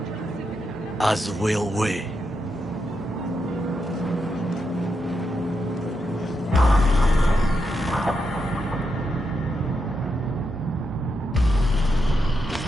As will we.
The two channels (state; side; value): normal; both; correlation 0.84